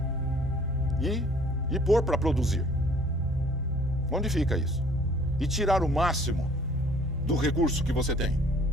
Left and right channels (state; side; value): normal; both; correlation 0.55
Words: E pôr para produzir. Onde fica isso? E tirar o máximo do recurso que você tem.